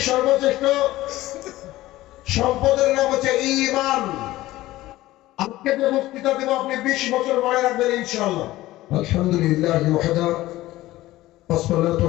সর্বশ্রেষ্ঠ সম্পদের নাম হচ্ছে ঈমান। আজকে যে বক্তৃতা দেব আপনি 20 বছর মনে রাখবেন ইনশাআল্লাহ। আলহামদুলিল্লাহ ওয়াহদা ওয়াসসালাতু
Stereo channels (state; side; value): quieter; right; 16.8 dB